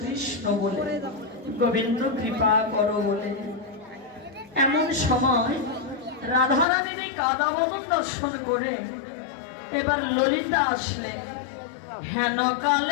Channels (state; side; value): drops out; right; at 6.7 s